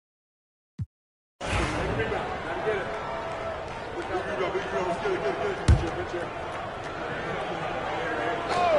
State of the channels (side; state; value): both; identical; correlation 1.00